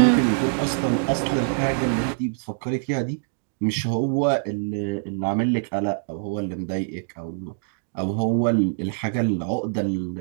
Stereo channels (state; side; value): silent; left; digital silence